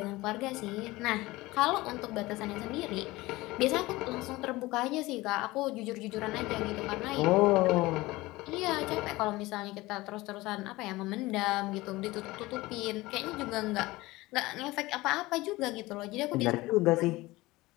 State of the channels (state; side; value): quieter; right; 20.0 dB